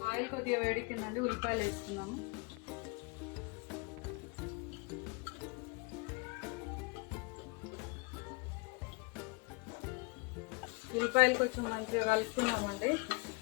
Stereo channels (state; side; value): quieter; right; 29.6 dB